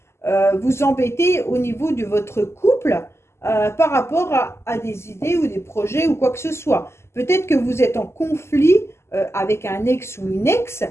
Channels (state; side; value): late; right; 0.13 ms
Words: vous embêter au niveau de votre couple par rapport à des idées ou des projets ou quoi que ce soit. Peut-être que vous êtes en conflit avec un ex ou une ex